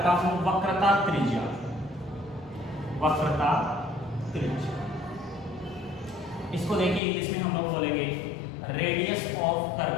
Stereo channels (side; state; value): right; drops out; at 7.0 s